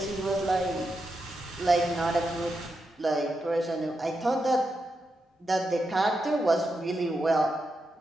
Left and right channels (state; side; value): normal; both; correlation 0.86